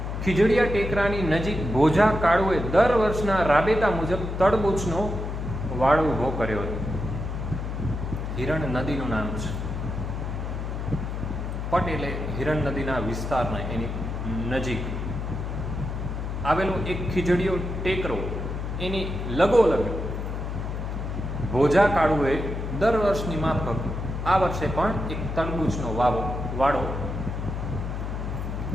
ખીજડીયા ટેકરાની નજીક બોજા કાળુએ દર વર્ષના રાબેતા મુજબ તડબૂચનો વાડો ઊભો કર્યો હતો. હિરણ નદીનું નામ છે. પટ એટલે હિરણ નદીના વિસ્તારના એની નજીક આવેલો એક ખીજડીયો ટેકરો, એની લગોલગ બોજા કાળુએ દર વર્ષની માફક આ વર્ષે પણ એક તરબૂચનો વાડો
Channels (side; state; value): left; noise; hum, 4 dB below the sound